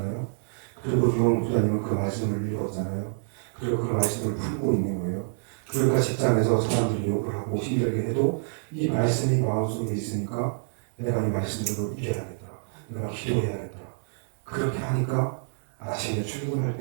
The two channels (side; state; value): left; silent; digital silence